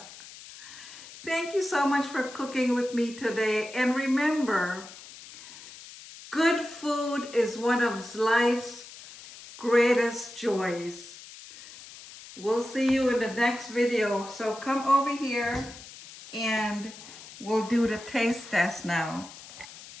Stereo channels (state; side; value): noise; left; hiss, 16 dB below the sound